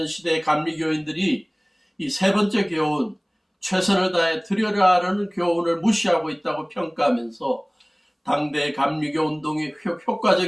시대의 감리교인들이 이 세 번째 교훈, 최선을 다해 드려라라는 교훈을 무시하고 있다고 평가하면서 당대의 감리교 운동이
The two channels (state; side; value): identical; both; correlation 1.00